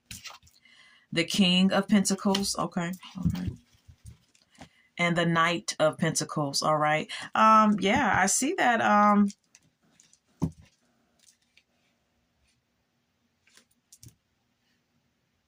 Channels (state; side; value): identical; both; correlation 1.00